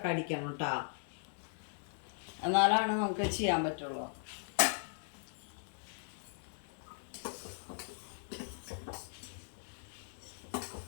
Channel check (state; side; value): silent; right; digital silence